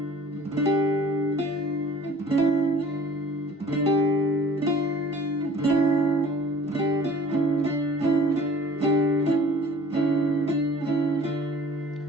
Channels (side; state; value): both; normal; correlation 0.48